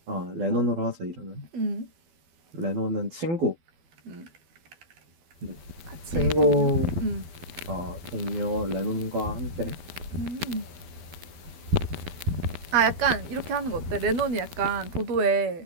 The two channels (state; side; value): late; left; 12 ms